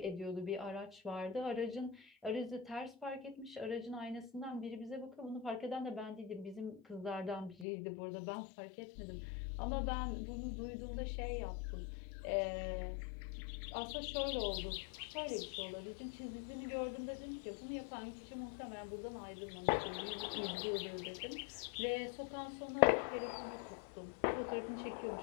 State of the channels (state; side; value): drops out; right; at 7.7 s